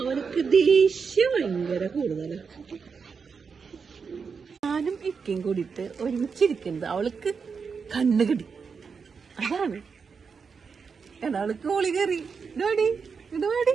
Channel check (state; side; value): quieter; left; 5.6 dB